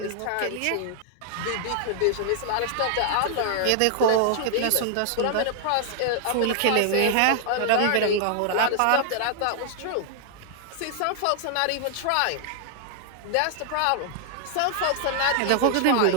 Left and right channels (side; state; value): both; different; correlation 0.00